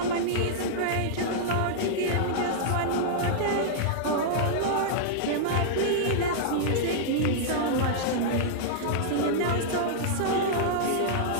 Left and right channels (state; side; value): different; both; correlation -0.02